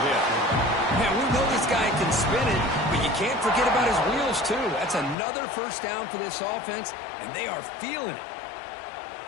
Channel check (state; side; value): drops out; right; at 5.2 s